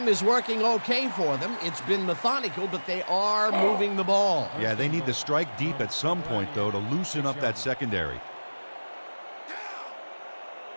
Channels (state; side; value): inverted; both; correlation -1.00